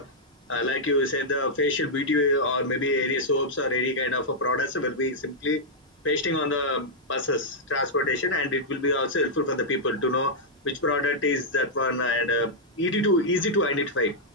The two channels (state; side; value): normal; both; correlation -0.06